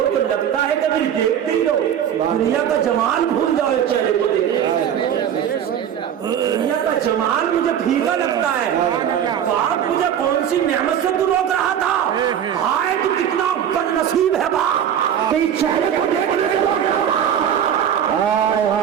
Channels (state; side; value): quieter; left; 9.3 dB